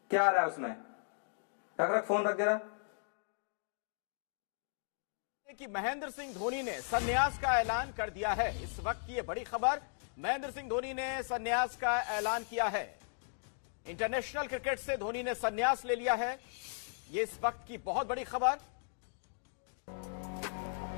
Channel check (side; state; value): right; silent; digital silence